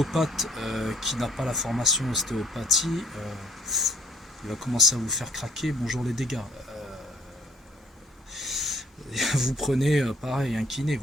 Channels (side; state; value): both; normal; correlation 0.58